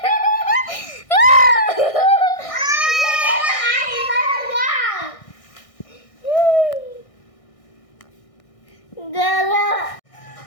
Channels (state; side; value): late; right; 1.6 ms